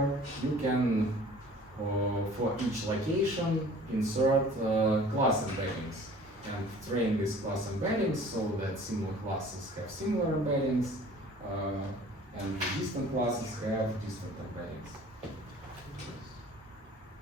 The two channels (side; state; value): both; normal; correlation 0.48